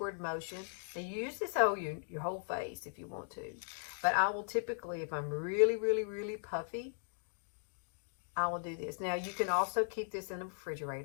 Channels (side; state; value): right; silent; digital silence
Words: motion. Now you use this over your whole face if you want to. But I will typically, if I'm really, really, really puffy, I will do this. Now you can also keep this in the